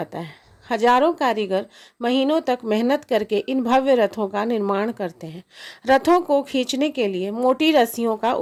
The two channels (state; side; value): identical; both; correlation 1.00